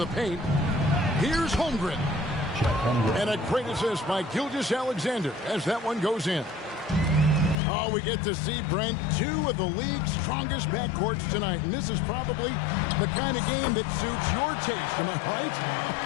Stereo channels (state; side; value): drops out; right; at 7.6 s